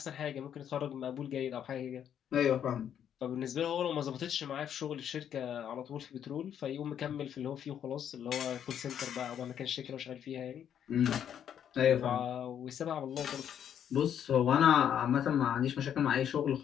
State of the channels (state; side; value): quieter; right; 9.2 dB